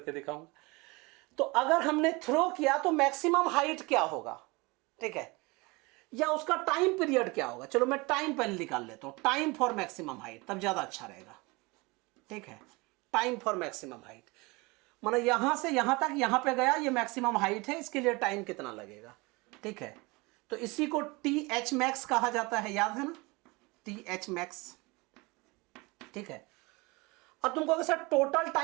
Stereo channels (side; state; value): left; quieter; 25.2 dB